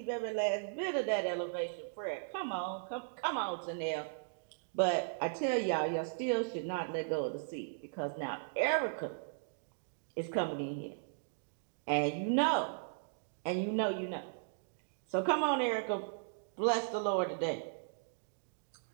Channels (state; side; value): silent; left; digital silence